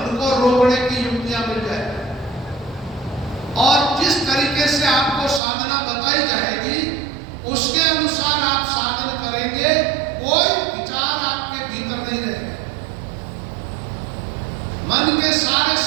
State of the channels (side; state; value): left; drops out; at 5.4 s